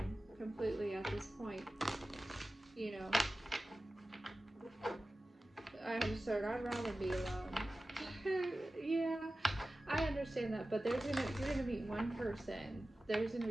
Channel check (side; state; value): both; normal; correlation 0.95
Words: completely at this point. I'd rather be alone. Yeah, I understand that, but you're gonna meet one person. There's gonna